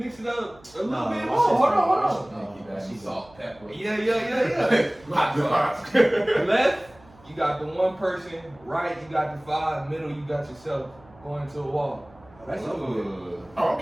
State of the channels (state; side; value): noise; right; hum, 26 dB below the sound